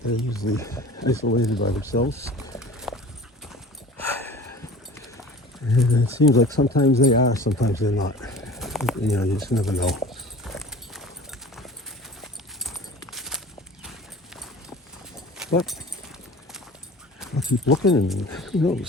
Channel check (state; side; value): normal; both; correlation 0.42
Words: they're usually isolated by themselves. And it seems like sometimes they are, sometimes they're not. You know, you just never know. But I'll keep looking, and who